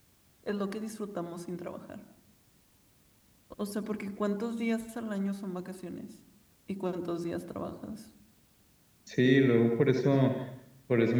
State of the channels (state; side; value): identical; both; correlation 1.00